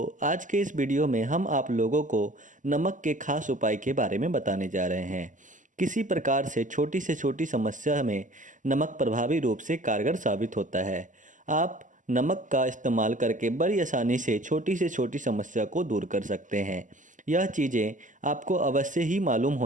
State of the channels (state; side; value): late; left; 0.37 ms